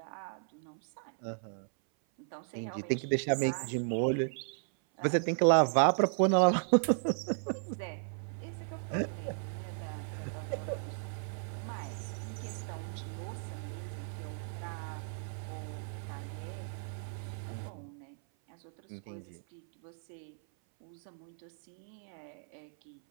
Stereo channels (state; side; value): silent; left; 54 dB below the other